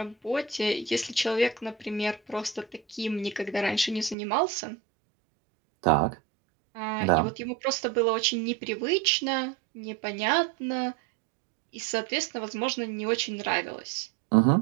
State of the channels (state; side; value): drops out; left; at 4.2 s